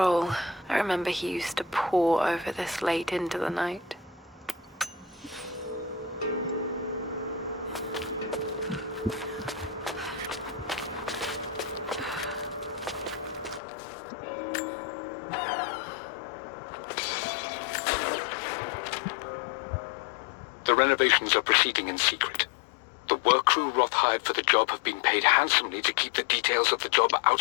I remember he used to pore over this late into the night. the renovations are proceeding in secret. The work crew Roth hired for the job have been paid handsomely to keep the details of the job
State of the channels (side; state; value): right; drops out; at 13.6 s